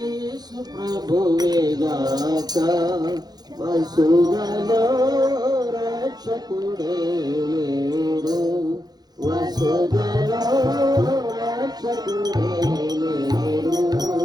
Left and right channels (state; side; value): late; left; 0.19 ms